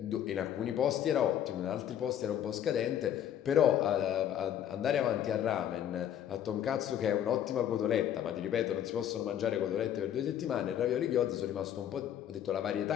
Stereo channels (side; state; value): right; quieter; 10.3 dB